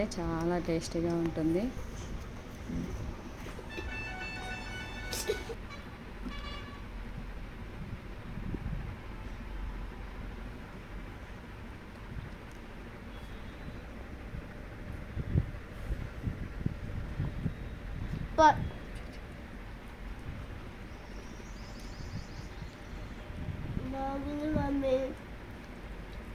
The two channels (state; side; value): identical; both; correlation 1.00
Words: చాలా టేస్టీగా ఉంటుంది. బాగుంది మమ్మీ,